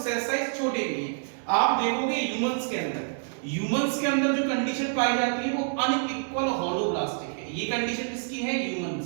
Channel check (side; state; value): left; silent; 59 dB below the other